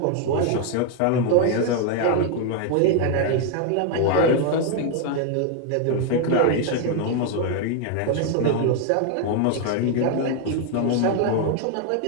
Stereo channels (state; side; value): different; both; correlation 0.00